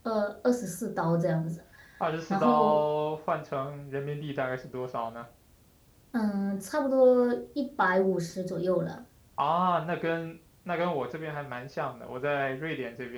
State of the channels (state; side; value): identical; both; correlation 1.00